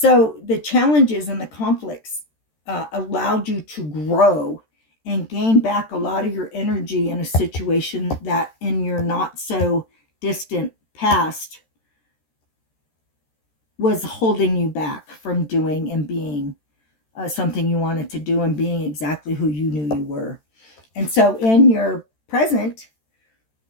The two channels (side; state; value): right; late; 13 ms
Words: the challenges and the conflicts allowed you to grow and gain back a lot of your energy in a situation that in your not so distant past was holding you back from doing and being something you wanted to do and being exactly who you knew you were. And so in your present,